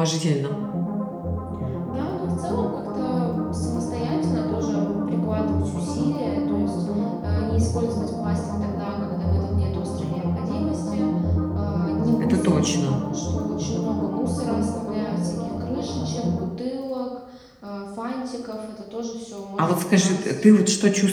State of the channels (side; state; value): both; identical; correlation 1.00